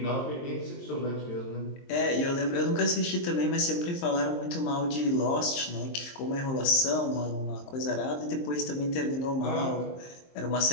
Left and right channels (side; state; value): right; late; 23 ms